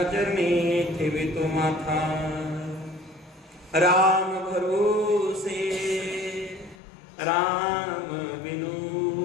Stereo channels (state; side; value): drops out; right; at 6.8 s